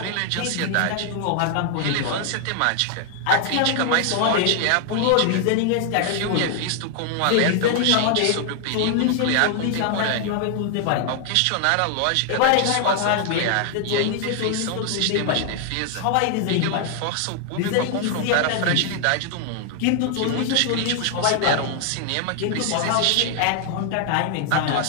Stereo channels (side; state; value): both; different; correlation 0.00